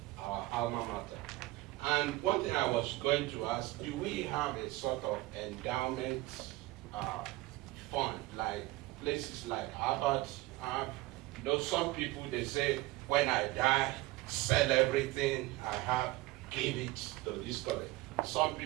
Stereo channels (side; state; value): left; quieter; 19.4 dB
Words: our alma mater. And one thing I was going to ask, do we have a sort of endowment fund, like places like Harvard have? You know, some people, they say, when I die, sell everything I have, give it to this college. Some